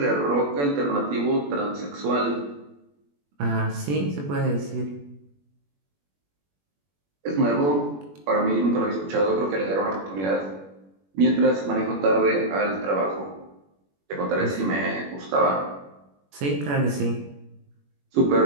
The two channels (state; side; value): late; left; 21 ms